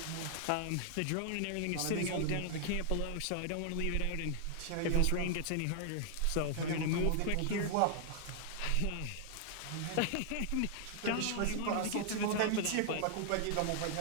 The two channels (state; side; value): different; both; correlation 0.00